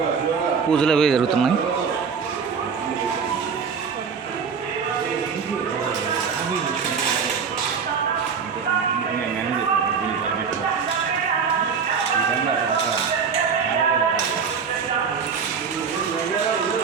పూజలు అవి జరుగుతున్నాయి.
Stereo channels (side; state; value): left; quieter; 6.1 dB